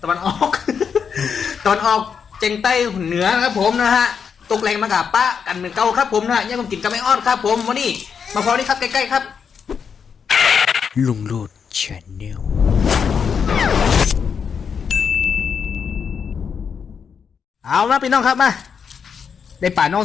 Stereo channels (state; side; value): quieter; right; 6.7 dB